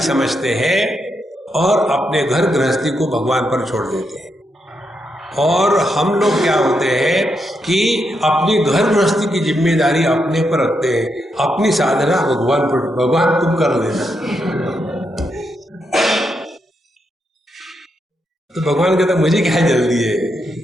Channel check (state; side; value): normal; both; correlation 0.82